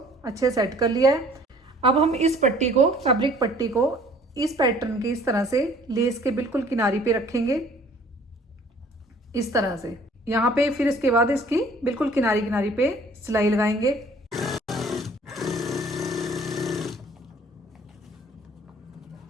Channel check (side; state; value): both; normal; correlation 0.54